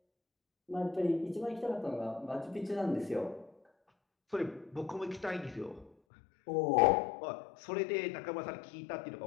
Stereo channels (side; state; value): right; drops out; at 5.9 s